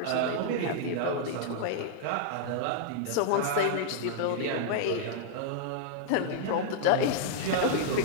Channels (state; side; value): different; both; correlation -0.01